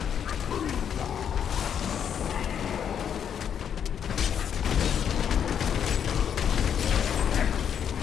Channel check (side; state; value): right; quieter; 8.4 dB